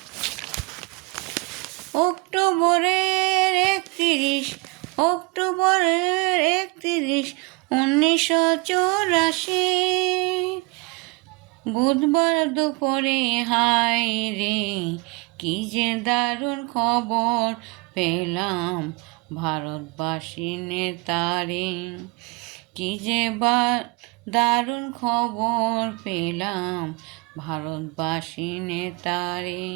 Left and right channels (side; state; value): left; quieter; 27.0 dB